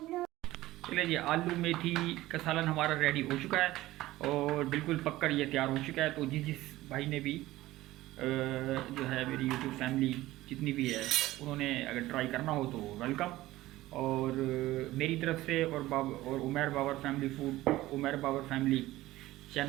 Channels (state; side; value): quieter; left; 16.9 dB